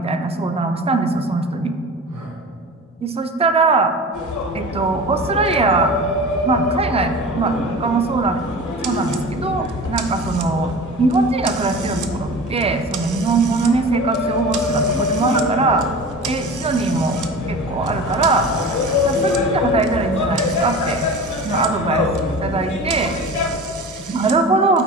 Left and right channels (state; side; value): normal; both; correlation 0.35